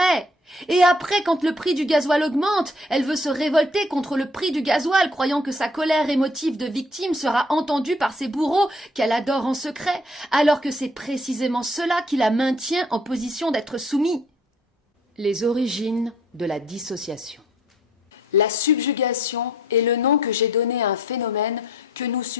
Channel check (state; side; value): normal; both; correlation 0.61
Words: Et après, quand le prix du gasoil augmente, elle veut se révolter contre le prix du gasoil, croyant que sa colère émotive de victime sera entendue par ses bourreaux qu'elle adore en secret, alors que c'est précisément cela qui la maintient en position d'être soumis. Les origines de la dissociation. La subjugation est le nom que j'ai donné à un phénomène que nous